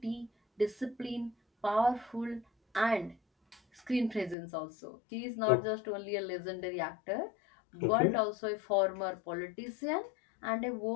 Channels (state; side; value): drops out; right; at 4.4 s